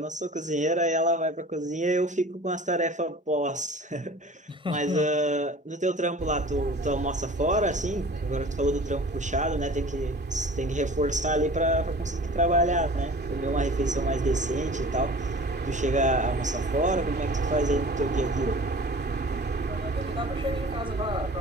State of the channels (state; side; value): normal; both; correlation 0.43